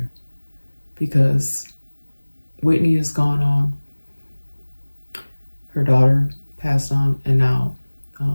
because Whitney has gone on, her daughter passed on, and now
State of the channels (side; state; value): both; inverted; correlation -1.00